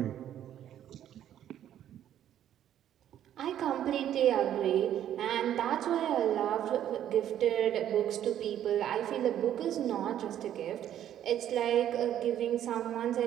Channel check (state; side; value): quieter; left; 10.9 dB